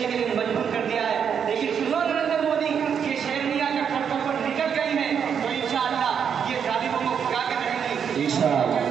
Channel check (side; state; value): left; quieter; 7.5 dB